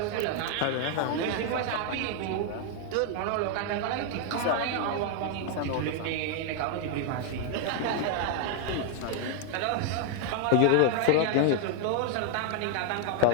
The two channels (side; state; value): both; different; correlation 0.00